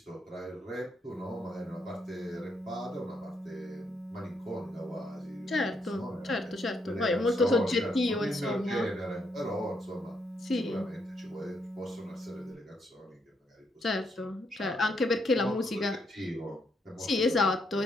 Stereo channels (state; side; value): normal; both; correlation 0.77